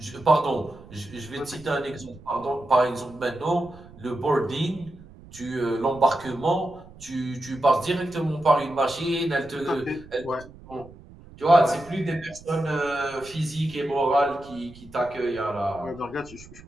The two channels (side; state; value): right; noise; rumble, 20 dB below the sound